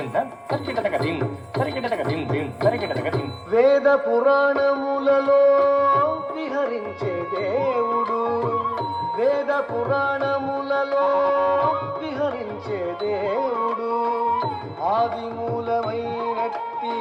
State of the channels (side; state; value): both; identical; correlation 1.00